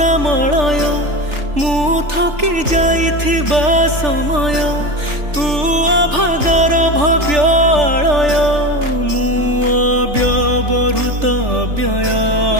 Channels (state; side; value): late; left; 3.4 ms